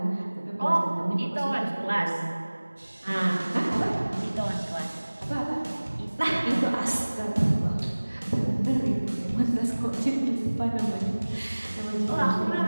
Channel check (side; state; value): both; inverted; correlation -1.00